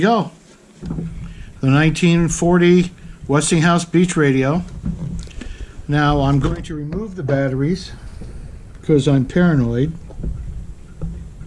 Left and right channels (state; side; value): identical; both; correlation 1.00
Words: go. The 1940 Westinghouse Beach radio. Now I'm going to remove the batteries because I'm paranoid.